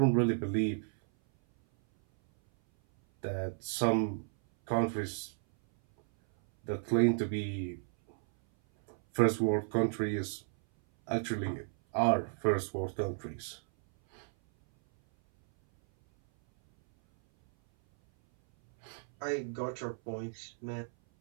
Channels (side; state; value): left; silent; 56 dB below the other